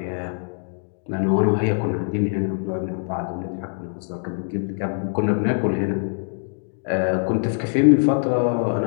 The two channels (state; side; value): silent; right; digital silence